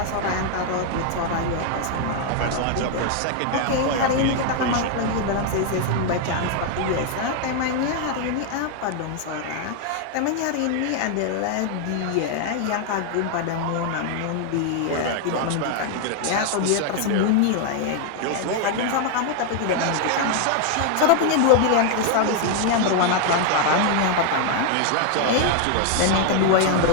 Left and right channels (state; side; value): different; both; correlation 0.00